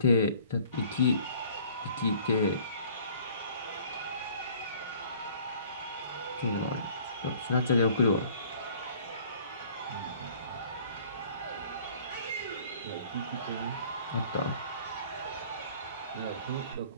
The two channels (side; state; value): both; inverted; correlation -0.53